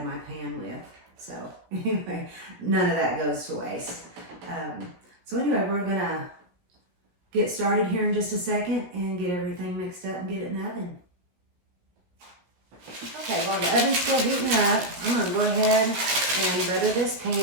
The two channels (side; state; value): left; late; 16 ms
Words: my pan with. So anyway, none of that goes to waste. So anyway, we're going to get started here in just a second and get everything mixed up and get it in the oven. Okay, while the oven's still heating up, I'm going to go ahead and butter this